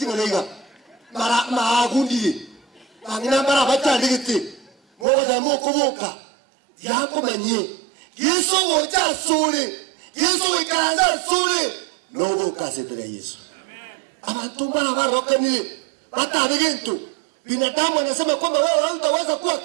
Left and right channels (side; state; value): left; drops out; at 5.1 s